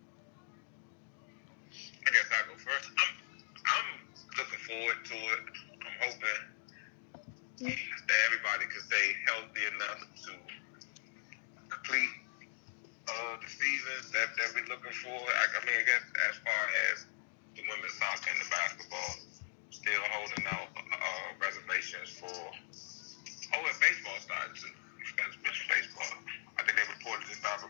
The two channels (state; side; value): silent; right; digital silence